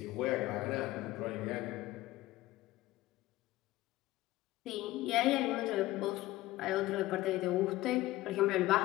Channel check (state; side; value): quieter; right; 17.2 dB